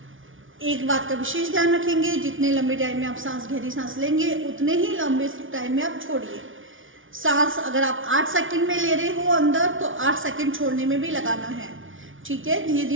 एक बात का विशेष ध्यान रखेंगे, जितने लंबे टाइम में आप सांस, गहरी सांस लेंगे, उतने ही लंबे टाइम में आप छोड़िए। सांस अगर आप 8 सेकंड में ले रहे हो अंदर, तो 8 सेकंड छोड़ने में भी लगाना है। ठीक है, धीरे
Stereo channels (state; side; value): late; left; 0.57 ms